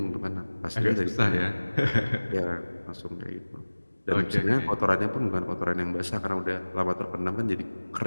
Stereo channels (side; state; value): both; inverted; correlation -1.00